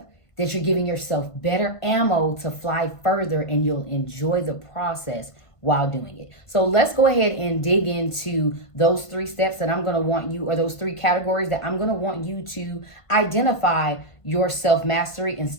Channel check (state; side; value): late; right; 1.5 ms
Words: that you're giving yourself better ammo to fly further, and you'll enjoy the process while doing it. So let's go ahead and dig into those 3 steps that I'm going to want you, or those 3 categories that I'm going to want you to identify your self-mastery and